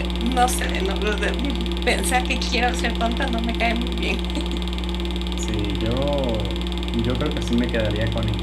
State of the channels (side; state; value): both; identical; correlation 1.00